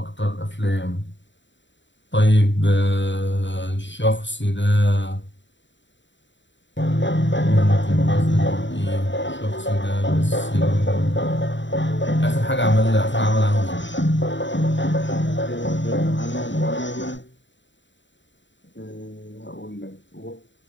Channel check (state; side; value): late; right; 0.54 ms